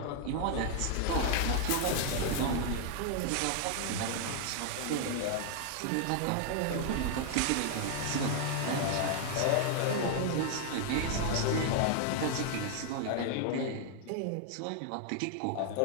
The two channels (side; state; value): both; different; correlation 0.00